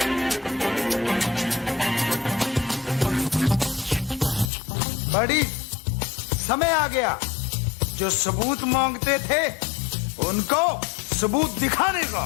बड़ी समय आ गया, जो सबूत मांगते थे उनको सबूत दिखाने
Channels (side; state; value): right; drops out; at 4.5 s